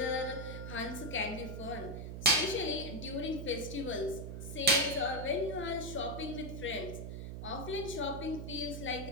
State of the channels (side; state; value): right; noise; hum, 7 dB below the sound